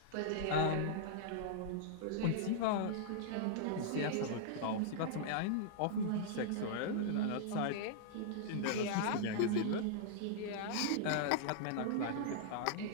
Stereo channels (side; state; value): both; different; correlation -0.01